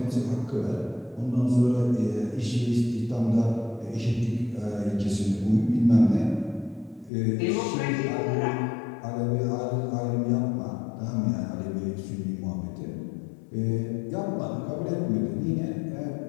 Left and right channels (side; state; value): right; drops out; at 7.1 s